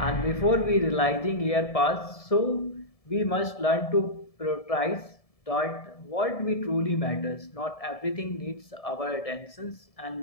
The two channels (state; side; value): late; right; 1.7 ms